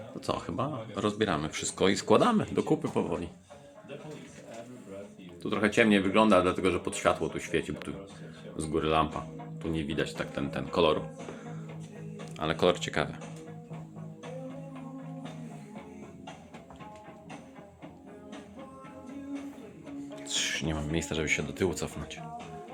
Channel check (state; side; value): identical; both; correlation 1.00